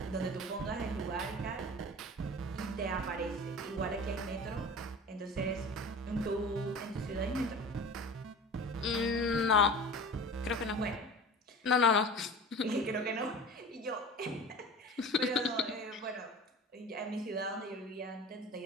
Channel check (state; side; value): normal; both; correlation 0.36